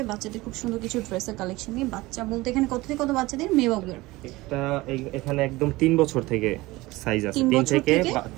বাচ্চাদের খুব সুন্দর কিছু ড্রেসের কালেকশন নিয়ে। বাচ্চা বলতে এখানে কত থেকে কত বাচ্চাদের মেয়ে বাবুর? এখানে একদম 3 বছর থেকে সাইজ আছে, 3 থেকে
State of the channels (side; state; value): left; quieter; 20.2 dB